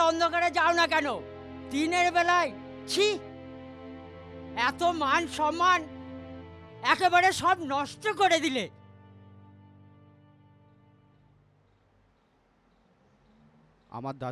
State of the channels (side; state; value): both; identical; correlation 1.00